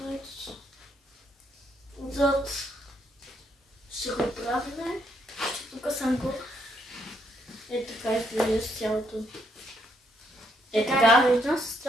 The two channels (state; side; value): normal; both; correlation 0.74